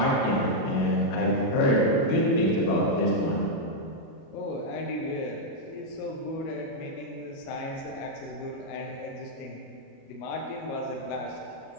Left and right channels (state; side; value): late; right; 37 ms